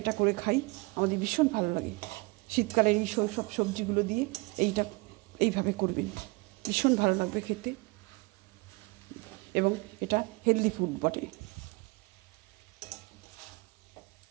এটা করে খাই, আমাদের ভীষণ ভালো লাগে। শীতকালের এই সব সবজিগুলো দিয়ে এইভাবে করবেন, ভীষণ ভালো লাগবে খেতে এবং এটা হেলদি ফুড বটে।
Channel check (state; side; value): quieter; left; 26.3 dB